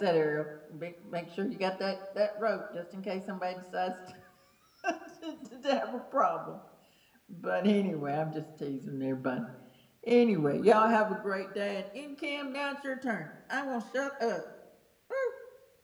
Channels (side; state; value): both; identical; correlation 1.00